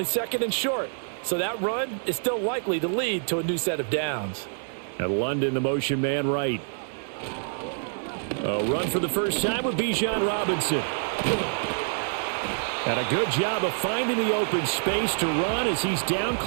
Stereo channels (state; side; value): silent; left; digital silence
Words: second and short. So that run is still likely to lead to a new set of downs. And London, the motion man right. A run for the first time with Bijan Robinson. And a good job of finding the open space to run as he's down